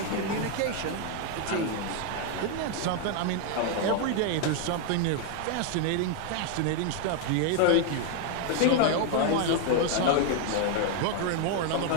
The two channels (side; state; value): both; different; correlation 0.00